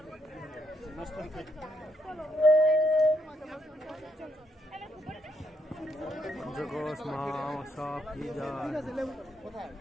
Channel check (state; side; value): normal; both; correlation 0.76